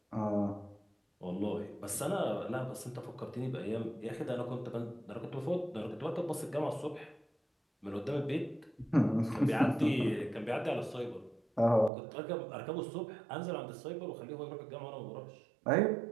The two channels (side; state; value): left; drops out; at 11.9 s